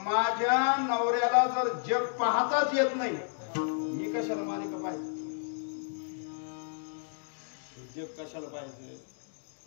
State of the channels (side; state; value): right; silent; digital silence